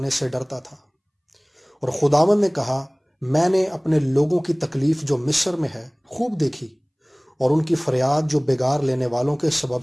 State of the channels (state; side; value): identical; both; correlation 1.00